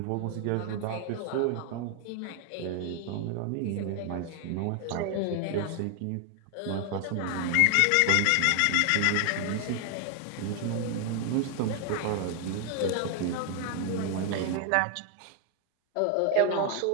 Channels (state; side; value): different; both; correlation 0.00